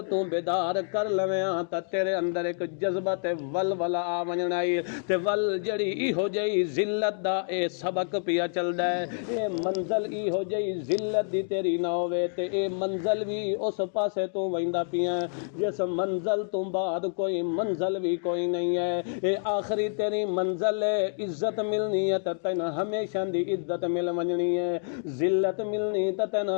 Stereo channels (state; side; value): silent; right; 59 dB below the other